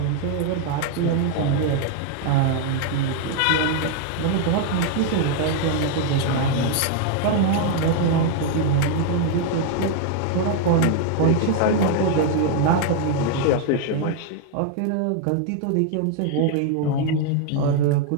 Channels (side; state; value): both; different; correlation 0.00